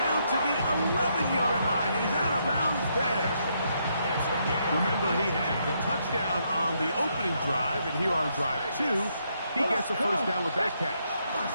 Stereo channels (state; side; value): inverted; both; correlation -0.76